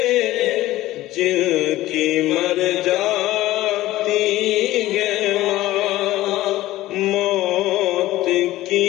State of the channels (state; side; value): quieter; right; 16.1 dB